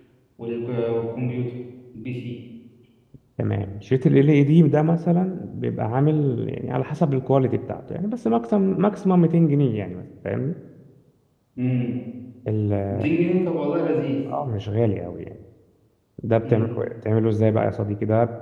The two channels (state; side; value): identical; both; correlation 1.00